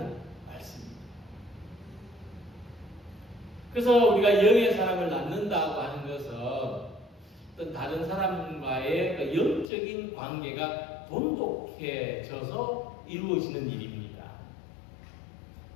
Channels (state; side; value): drops out; right; at 9.7 s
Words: 말씀입니다. 그래서 우리가 영의 사람을 낳는다고 하는 것은 어떤 다른 사람과의 그 영적인 관계가 돈독해져서 이루어지는 일입니다.